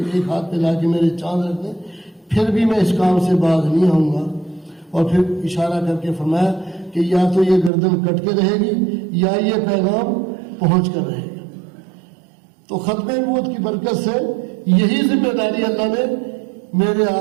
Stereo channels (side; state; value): left; drops out; at 7.7 s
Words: ہاتھ پہ لا کے میرے چاند رکھ دیں، پھر بھی میں اس کام سے باز نہیں آؤں گا۔ اور پھر اشارہ کر کے فرمایا کہ یا تو یہ گردن کٹ کے رہے گی یا یہ پیغام پہنچ کر رہے گا۔ تو ختم نبوت کی برکت سے یہی ذمہ داری اللہ نے میرے